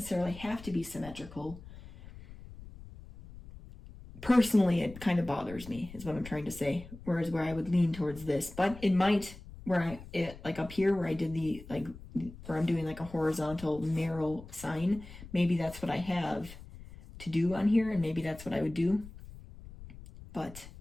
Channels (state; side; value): noise; left; rumble, 16 dB below the sound